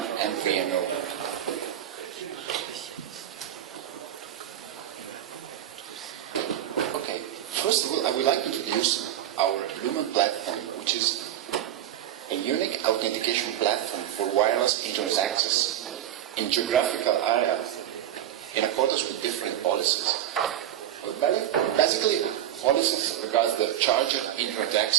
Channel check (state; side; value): quieter; left; 11.5 dB